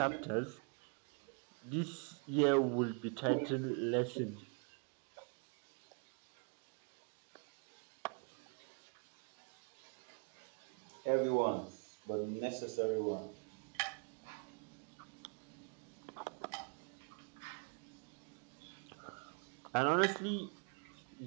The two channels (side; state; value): left; quieter; 36.7 dB